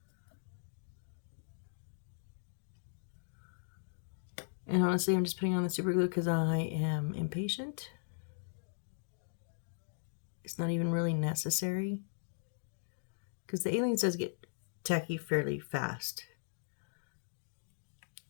And honestly, I'm just putting on the super glue because I am impatient. It's not even really necessary, because the Aliens does get tacky fairly fast.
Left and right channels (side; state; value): right; silent; digital silence